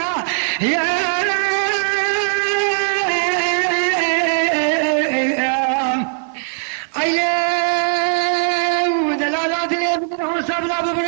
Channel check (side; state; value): left; silent; 58 dB below the other